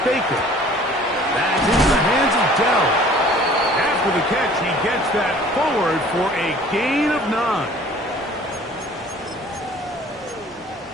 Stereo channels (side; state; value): both; normal; correlation 0.51